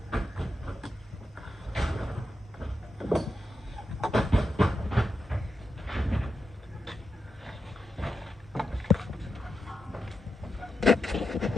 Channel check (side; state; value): both; normal; correlation 0.87